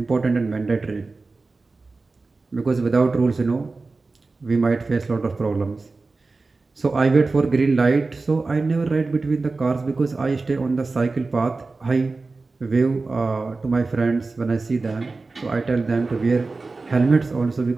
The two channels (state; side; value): quieter; left; 3.7 dB